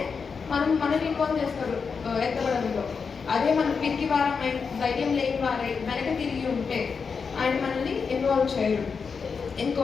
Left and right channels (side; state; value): right; quieter; 5.5 dB